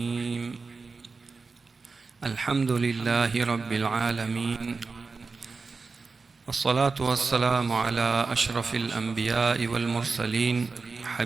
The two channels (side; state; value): left; quieter; 4.3 dB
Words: الحمد لله رب العالمين، والصلاة والسلام على أشرف الأنبياء والمرسلين،